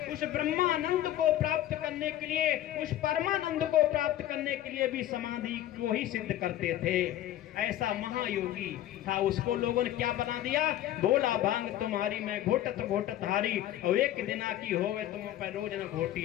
उस ब्रह्मानंद को प्राप्त करने के लिए, उस परमानंद को प्राप्त करने के लिए भी समाधि को ही सिद्ध करते थे। ऐसा महायोगी था। उसको लोगों ने क्या बना दिया? बोला भांग तुम्हारी मैं घोटत घोटत हारी, और एक दिना की हो गए तुम पर रोज न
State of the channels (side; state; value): right; quieter; 13.0 dB